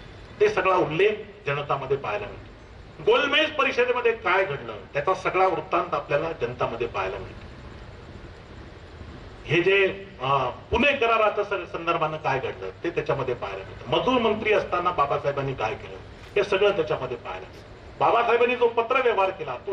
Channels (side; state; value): both; identical; correlation 1.00